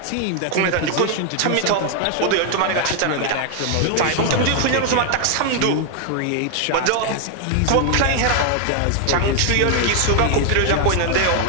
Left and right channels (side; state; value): both; different; correlation 0.00